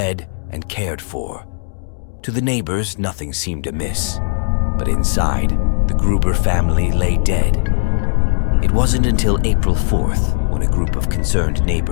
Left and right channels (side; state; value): right; silent; digital silence